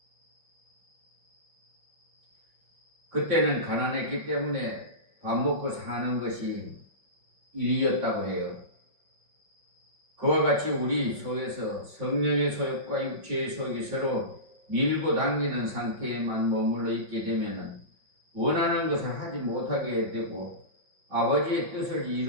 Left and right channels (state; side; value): late; left; 5.7 ms